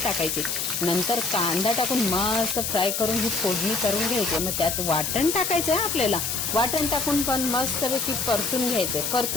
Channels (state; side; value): noise; left; hiss, 1 dB below the sound